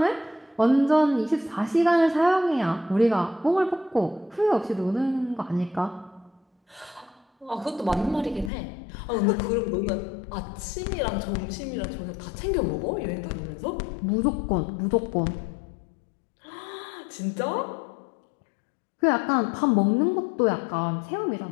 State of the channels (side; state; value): right; drops out; at 8.5 s